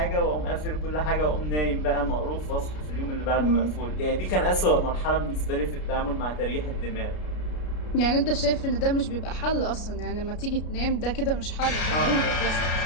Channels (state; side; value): late; right; 33 ms